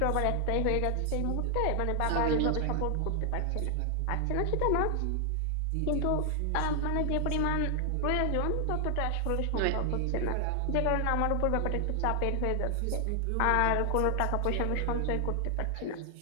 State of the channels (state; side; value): different; both; correlation 0.00